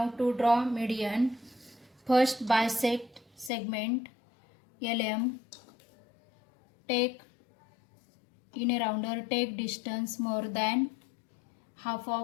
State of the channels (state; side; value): drops out; right; at 3.5 s